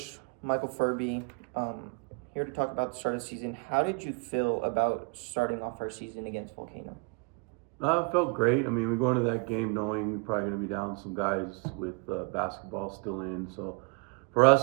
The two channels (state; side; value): quieter; left; 32.9 dB